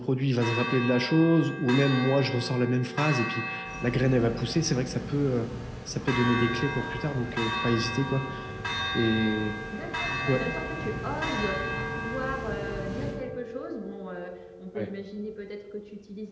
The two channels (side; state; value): both; identical; correlation 1.00